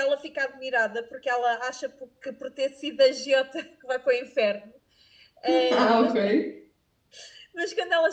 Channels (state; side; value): identical; both; correlation 1.00